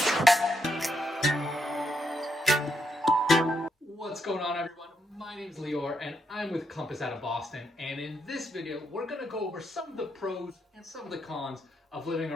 What's going on, everyone? My name's Lior and I'm with Compass out of Boston, and in this video we're going to go over some of the pros and some of the cons of living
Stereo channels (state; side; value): normal; both; correlation 0.79